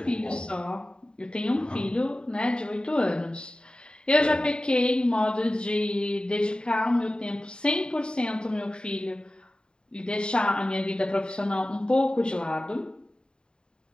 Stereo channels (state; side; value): late; right; 0.049 ms